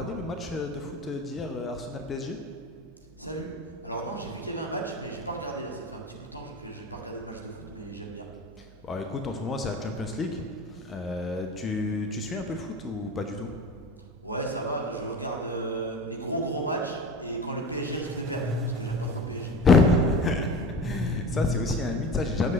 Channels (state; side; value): normal; both; correlation 0.32